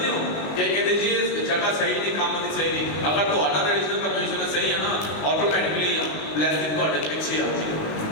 हो कि कहते जी जगह सही नहीं काम नहीं सही नहीं अगर तो ऑर्डर रिलीजन परमिशन सही है ना ऑटोमेटिकली ब्लेसिंग ਤੁਹਾਡੇ ਪਿੱਛੇ ਆ ਜਾਏਗੀ।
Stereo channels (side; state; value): right; late; 19 ms